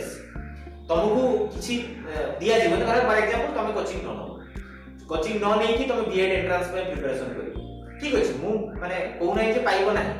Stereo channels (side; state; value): both; identical; correlation 1.00